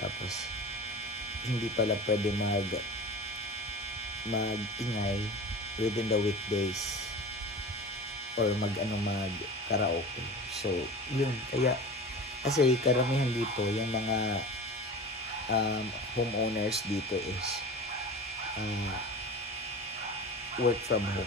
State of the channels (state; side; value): normal; both; correlation 0.34